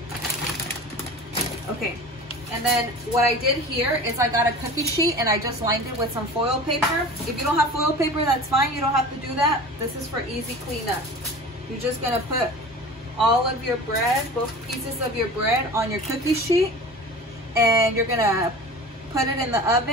Okay, and then what I did here is I got a cookie sheet and I just lined it with some foil paper. If you don't have foil paper, that's fine. You don't have to do that. This is for easy cleanup. You're just gonna put all of your bread, both pieces of your bread, on your cookie sheet, and you're gonna put it in the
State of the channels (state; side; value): normal; both; correlation 0.37